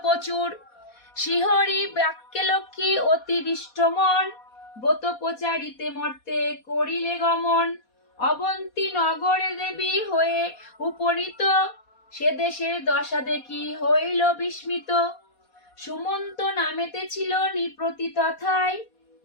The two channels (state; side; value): late; right; 4.2 ms